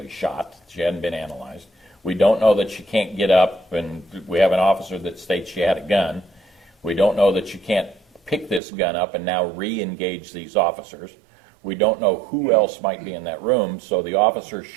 shot. She hadn't been analyzed. We don't know that she can't get up, and we have an officer that states she had a gun. We don't know that she can't pick this gun up and now re-engage these officers. We don't know who else might be in that room, so the officer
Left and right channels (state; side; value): drops out; left; at 8.6 s